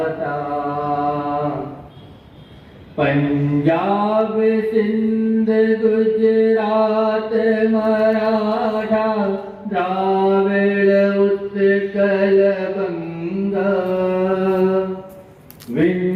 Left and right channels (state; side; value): identical; both; correlation 1.00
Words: पंजाब सिंध गुजरात मराठा द्राविड़ उत्कल बंगा,